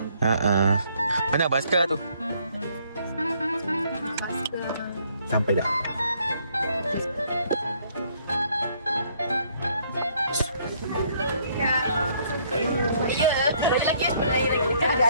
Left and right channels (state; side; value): inverted; both; correlation -0.66